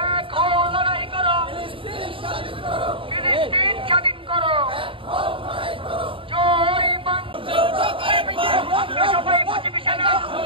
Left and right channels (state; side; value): late; left; 0.25 ms